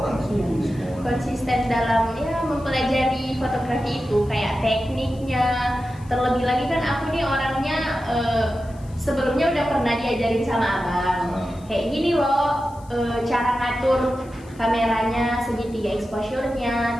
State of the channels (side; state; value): left; noise; hiss, 27 dB below the sound